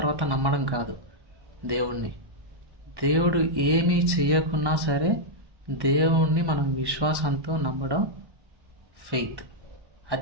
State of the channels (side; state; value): left; late; 1.2 ms